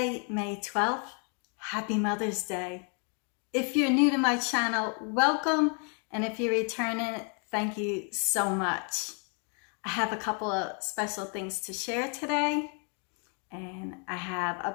May 12th. Happy Mother's Day. If you're new to my channel, welcome. And if you're returning, thank you so much. I have a couple of special things to share today. And I have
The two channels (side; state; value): right; quieter; 39.4 dB